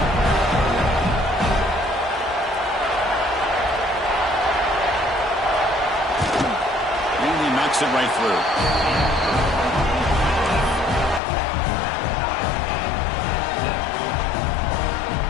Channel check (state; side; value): drops out; right; at 11.2 s